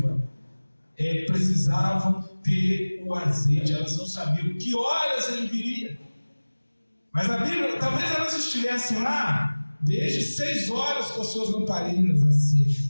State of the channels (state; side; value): inverted; both; correlation -1.00